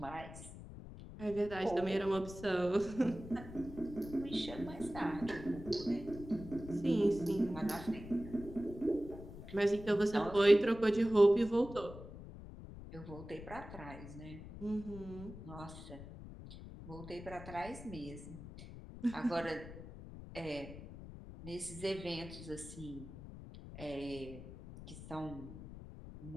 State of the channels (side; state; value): left; noise; rumble, 13 dB below the sound